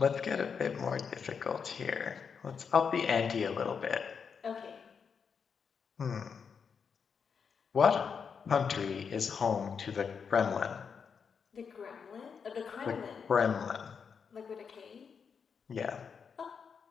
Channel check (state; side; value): quieter; right; 6.3 dB